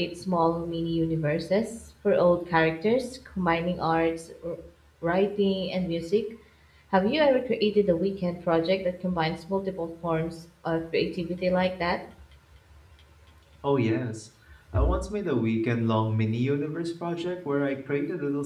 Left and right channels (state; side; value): identical; both; correlation 1.00